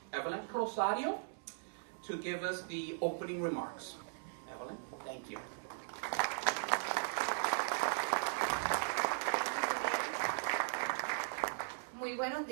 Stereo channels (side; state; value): left; silent; digital silence